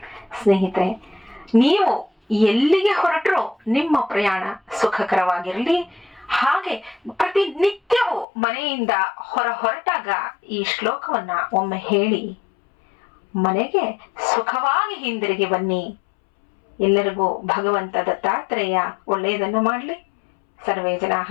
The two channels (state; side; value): drops out; right; at 8.2 s